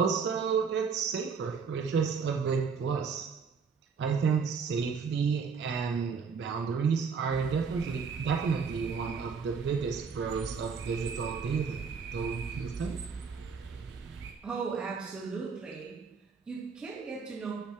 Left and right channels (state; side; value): quieter; left; 5.7 dB